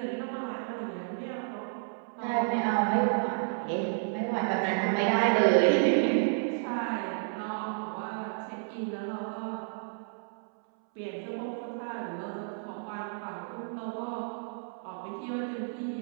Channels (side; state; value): left; silent; 57 dB below the other